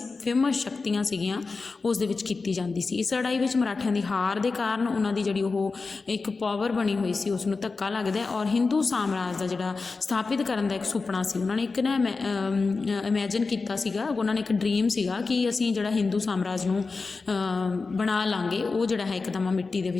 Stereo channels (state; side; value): quieter; right; 4.1 dB